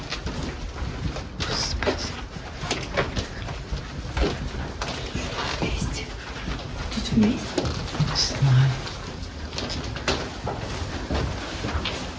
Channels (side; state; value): both; identical; correlation 1.00